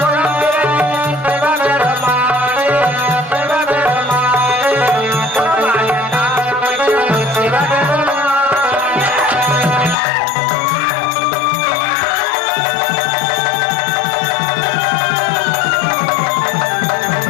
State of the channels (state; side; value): drops out; right; at 10.0 s